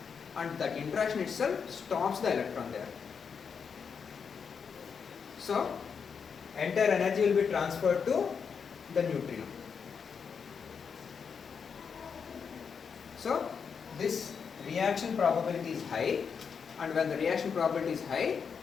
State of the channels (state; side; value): quieter; right; 6.3 dB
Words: and that interaction itself stops the electron there. So entire energy will be transferred to the neutrino. So this reaction probability is high, and when the reaction probability is high,